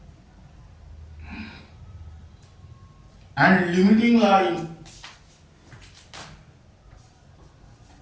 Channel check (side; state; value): both; identical; correlation 1.00